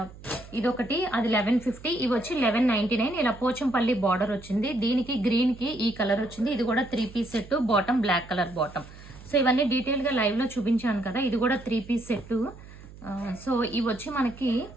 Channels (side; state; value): right; noise; hum, 18 dB below the sound